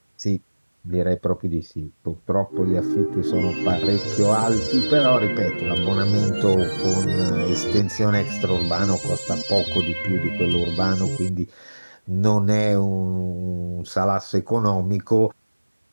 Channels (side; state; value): both; inverted; correlation -1.00